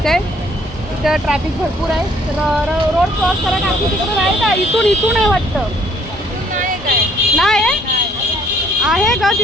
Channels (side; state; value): both; normal; correlation 0.62